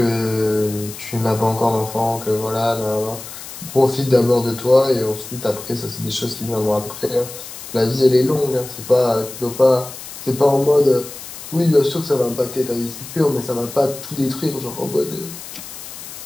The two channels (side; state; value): left; noise; hiss, 13 dB below the sound